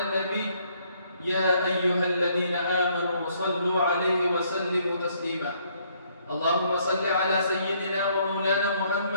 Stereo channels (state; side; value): inverted; both; correlation -0.67